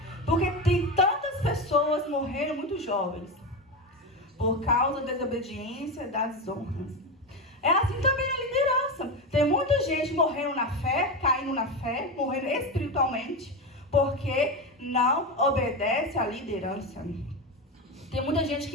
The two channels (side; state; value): both; normal; correlation 0.17